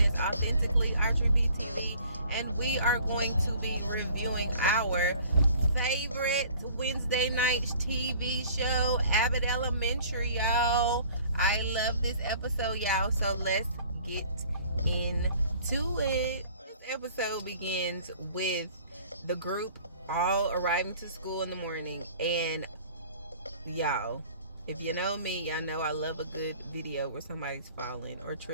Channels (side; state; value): both; inverted; correlation -0.52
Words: as Authentically Archery BTV, and we are going to be reviewing our favorite Wednesday night TV show, Abbott Elementary, y'all. I love this episode, y'all, so let's get into it. This episode begins with the group all arriving to school in the morning, and y'all, if you know me, y'all know I love a good video where somebody's falling or